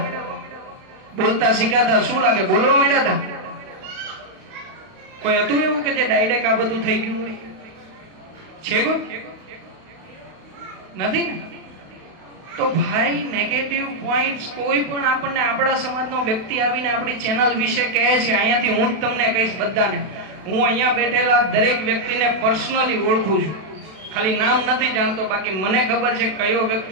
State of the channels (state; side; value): late; left; 32 ms